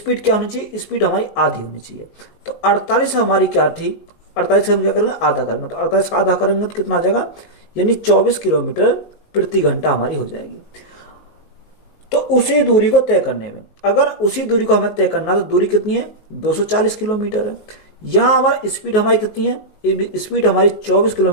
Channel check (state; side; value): late; right; 19 ms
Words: क्या होनी चाहिए, स्पीड हमारी आधी होनी चाहिए। तो 48 हमारी क्या थी, 48 हम क्या करेंगे, आधा करेंगे, तो 48 का आधा करेंगे तो कितना आ जाएगा, यानी 24 किलोमीटर प्रति घंटा हमारी हो जाएगी। तो उसी दूरी को तय करने में, अगर उसी दूरी को हमें तय करना, तो दूरी कितनी है, 240 किलोमीटर है। यहाँ हमारी स्पीड हमारी कितनी है, स्पीड हमारी 24